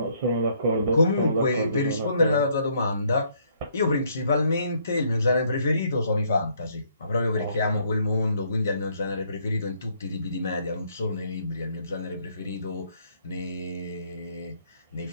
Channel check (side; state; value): both; inverted; correlation -0.68